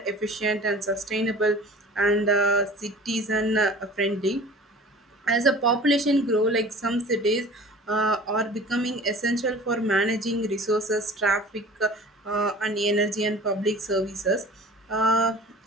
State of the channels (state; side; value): normal; both; correlation 0.43